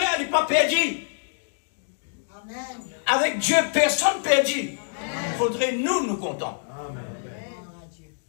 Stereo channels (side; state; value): right; silent; digital silence